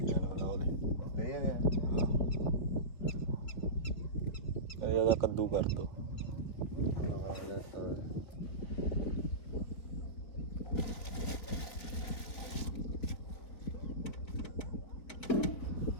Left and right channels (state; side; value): late; right; 4.3 ms